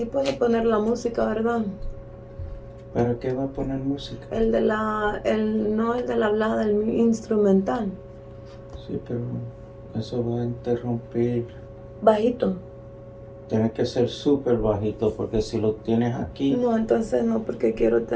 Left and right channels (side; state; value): both; identical; correlation 1.00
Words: puedo poner la música, ¿verdad? ¿Pero qué va a poner música? No el de la hablada, el instrumental. Sí, pero eso va a interrumpir. Bajito. Tiene que ser súper bajito porque si lo tienes aquí. No, entonces no, porque quiero